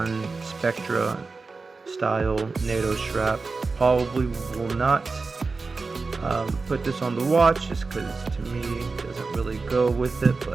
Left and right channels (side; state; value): left; quieter; 4.1 dB